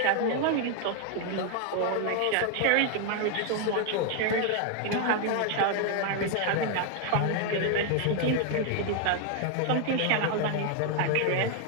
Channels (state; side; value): different; both; correlation 0.01